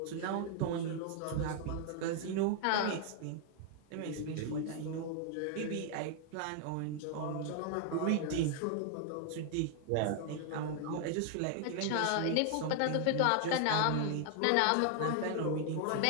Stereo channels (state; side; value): different; both; correlation 0.00